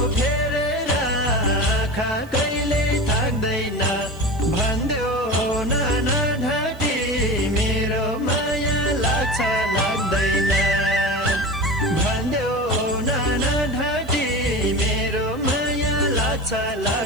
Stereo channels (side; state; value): right; noise; hiss, 26 dB below the sound